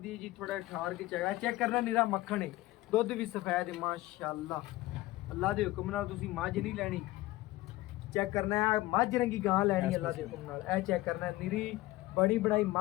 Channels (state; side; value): quieter; right; 18.1 dB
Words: ਜੀ ਥੋੜਾ ਠਾਰ ਕੇ ਚੈੱਕ ਕਰਨਾ ਨੀਰਾ ਮੱਖਣ ਹੈ ਦੁੱਧ ਵੀ ਸਫੈਦ ਹੈ ਮਾਸ਼ਾਅੱਲਾ ਅੱਲਾ ਦੇ ਹੁਕਮ ਨਾਲ ਤੁਸੀਂ ਮੱਝ ਨਹੀਂ ਲੈਣੀ ਚੈੱਕ ਕਰਨਾ ਹੈ ਮੱਝ ਰੰਗੀ ਗਾਂ ਲੈਣੀ ਅੱਲਾ ਦੇ ਹੁਕਮ ਨਾਲ ਇਹ ਚੈੱਕ ਕਰਨਾ ਨੀਰੀ ਬੜੀ ਬਣਾਈ